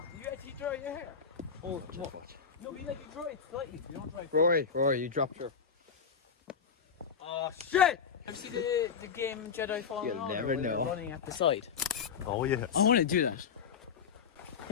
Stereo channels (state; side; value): quieter; right; 6.4 dB